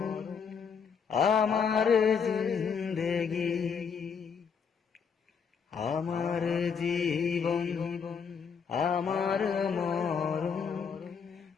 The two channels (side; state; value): right; quieter; 6.4 dB